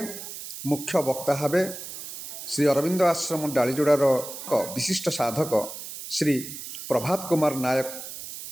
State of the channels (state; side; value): noise; right; hiss, 10 dB below the sound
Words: मुख्य वक्ता भावे श्री अरविंद आश्रम डालीजोड़ार विशिष्ट साधक श्री प्रभात कुमार नायक